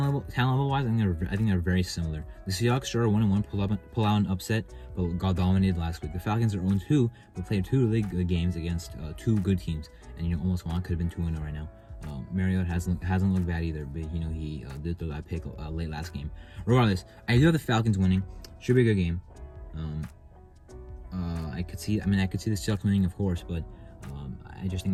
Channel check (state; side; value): identical; both; correlation 1.00